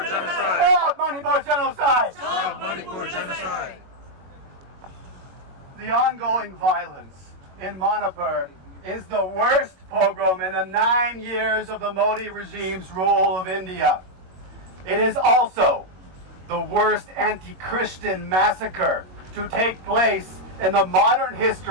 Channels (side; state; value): left; late; 21 ms